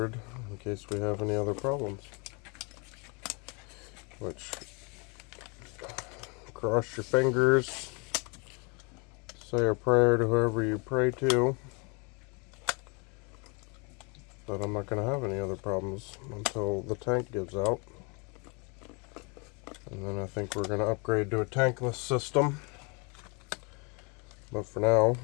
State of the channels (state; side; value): quieter; right; 32.0 dB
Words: in case we have any other problems. Which, cross your fingers, say a prayer to whoever you pray to, that I'm not going to have any other problems until the tank gives out. And then I think we're going to upgrade to a tankless system. But for now,